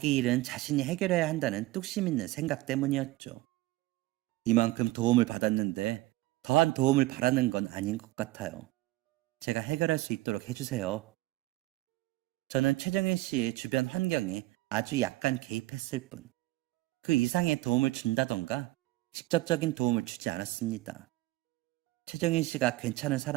일은 자신이 해결해야 한다는 뚝심 있는 생각 때문이었죠. 이만큼 도움을 받았는데 더한 도움을 바라는 건 아닌 것 같아요. 제가 해결할 수 있도록 해주세요. 저는 최정일 씨의 주변 환경에 아주 약간 개입했을 뿐, 그 이상의 도움을 준다던가 직접적인 도움을 주지 않았습니다. 최정일 씨가 괜찮은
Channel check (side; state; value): left; quieter; 18.5 dB